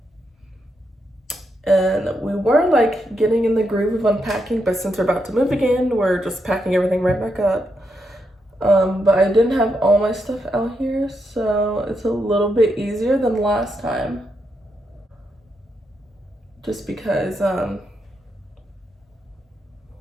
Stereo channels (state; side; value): normal; both; correlation 0.82